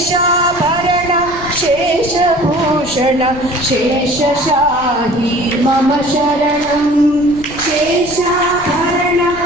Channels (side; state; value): left; noise; rumble, 16 dB below the sound